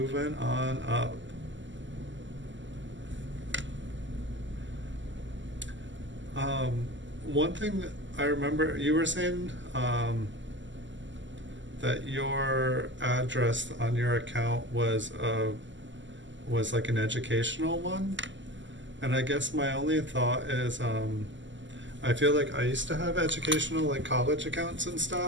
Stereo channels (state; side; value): late; left; 0.54 ms